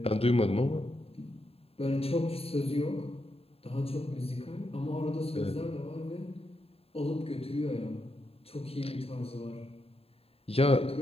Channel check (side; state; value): right; late; 0.28 ms